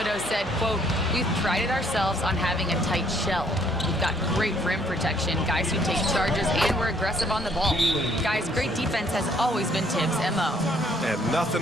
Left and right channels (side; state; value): both; normal; correlation 0.64